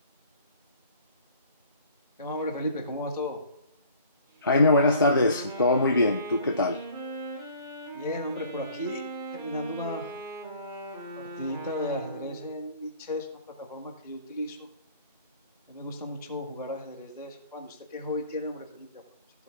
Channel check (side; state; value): both; inverted; correlation -0.52